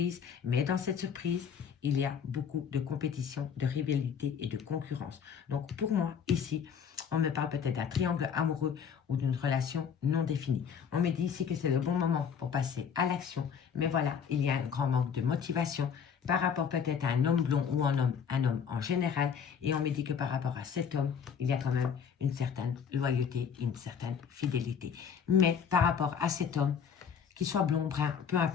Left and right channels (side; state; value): right; quieter; 7.2 dB